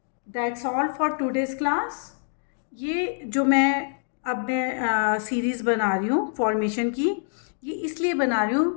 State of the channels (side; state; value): right; silent; digital silence